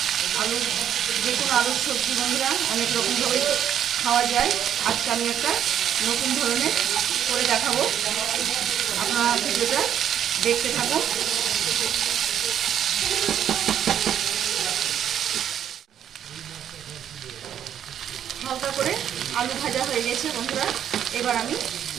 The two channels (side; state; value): left; quieter; 9.6 dB